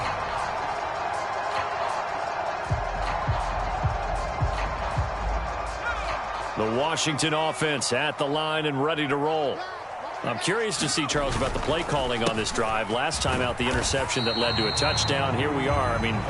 The Washington offense at the line and ready to roll. I'm curious to see, Charles, about the play calling on this drive. Last time out, the interception that led to a touchdown. Here we are. I mean,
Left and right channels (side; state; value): both; identical; correlation 1.00